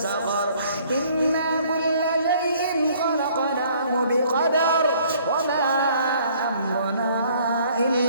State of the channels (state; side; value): inverted; both; correlation -0.59